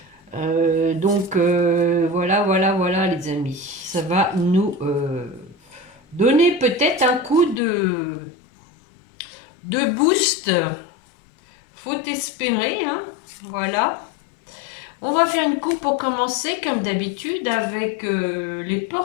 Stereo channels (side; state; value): right; drops out; at 7.6 s